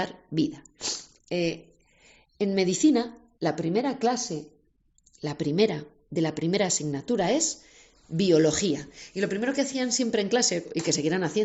vida. En medicina, la primera clase, de la primera asignatura es biología. Y lo primero que hacían siempre en clase, y que seguirán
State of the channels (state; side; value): identical; both; correlation 1.00